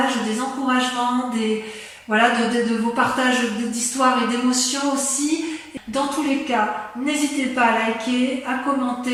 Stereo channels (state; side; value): identical; both; correlation 1.00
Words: des encouragements, de vos partages d'histoires et d'émotions aussi. Dans tous les cas, n'hésitez pas à liker, à